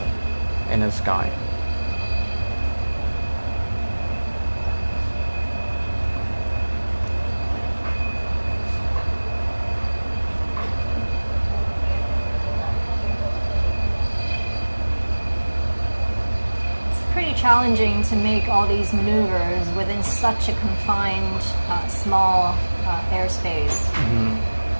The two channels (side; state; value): both; inverted; correlation -1.00